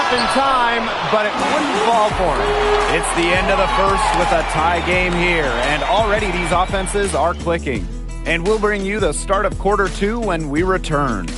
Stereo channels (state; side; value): identical; both; correlation 1.00